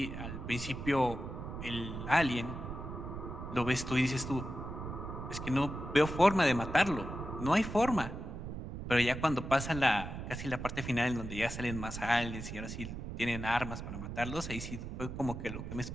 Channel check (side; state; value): right; noise; rumble, 7 dB below the sound